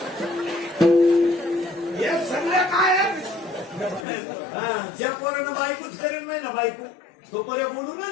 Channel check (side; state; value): right; drops out; at 4.0 s